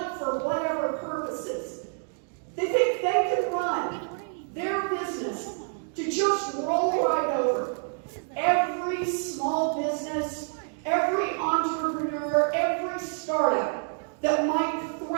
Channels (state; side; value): silent; left; 59 dB below the other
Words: for whatever purposes. They think they can run their business to just roll right over every small business, every entrepreneur, every startup that might